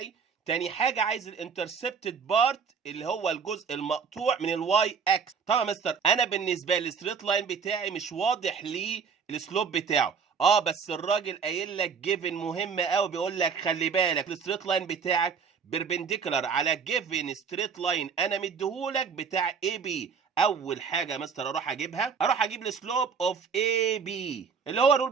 تاني حاجه عايز الانترسبتد بارت اللي هو الجزء المقطوع من الواي اكس. طبعا يا مستر انا بالنسبه للستريت لاين بتاعي مش واضح لي السلوب بتاعه، بس الراجل قايل لك جيفن مهمه قوي، بيقول لك خلي بالك الستريت لاين بتاعك بيربنديكولار على جيفن ستريت لاين انا مديهولك بتاع اي بي. اول حاجه يا مستر اروح اجيب السلوب اوف اي بي اللي هو الرول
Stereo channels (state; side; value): quieter; left; 6.0 dB